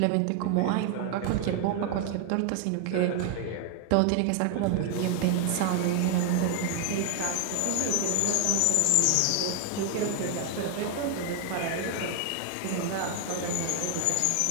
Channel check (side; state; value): both; different; correlation 0.00